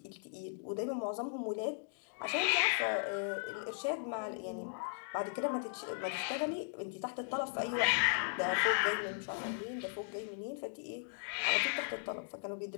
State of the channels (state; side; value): silent; right; digital silence